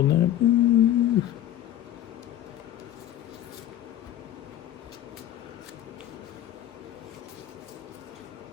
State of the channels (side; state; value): right; quieter; 12.1 dB